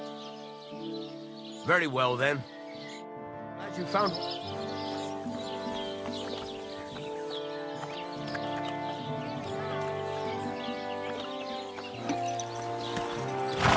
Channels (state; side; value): identical; both; correlation 1.00